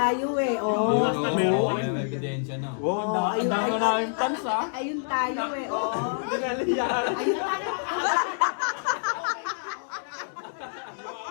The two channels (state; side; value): silent; right; digital silence